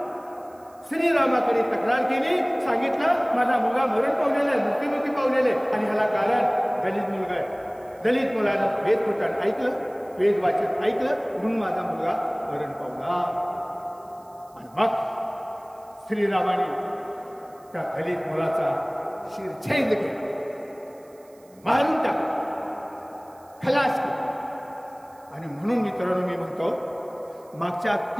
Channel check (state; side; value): noise; right; hiss, 30 dB below the sound